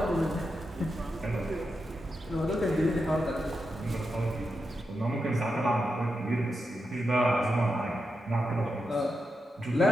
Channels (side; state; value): both; normal; correlation 0.87